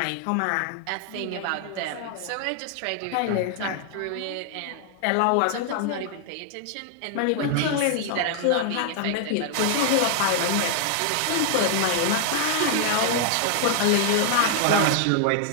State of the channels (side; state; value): both; different; correlation 0.00